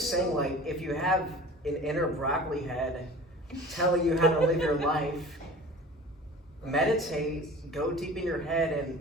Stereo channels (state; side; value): normal; both; correlation 0.41